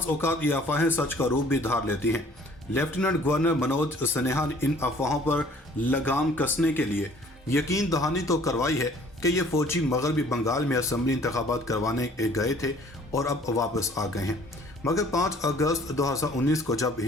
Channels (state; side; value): normal; both; correlation 0.55